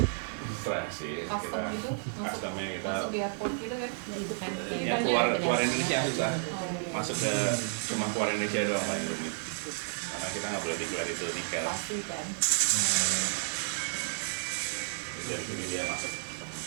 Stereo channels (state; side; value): silent; left; digital silence